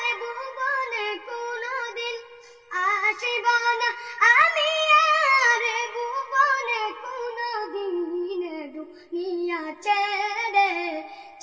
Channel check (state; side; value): identical; both; correlation 1.00